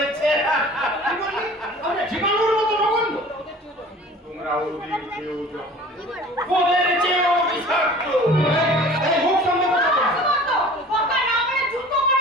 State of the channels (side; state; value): both; normal; correlation 0.44